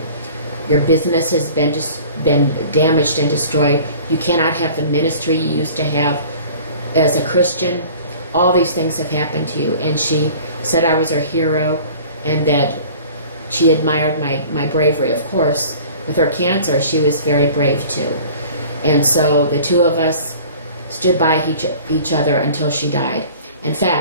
Your business has been damaged and destroyed. You cannot have the ministry you used to have as a Christian. All these things have happened to you. And she said I was her hero and that she admired my bravery. Of course, with her cancer, she was very brave too. And so the two of us stood by each other until she died. In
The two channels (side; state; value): both; inverted; correlation -0.46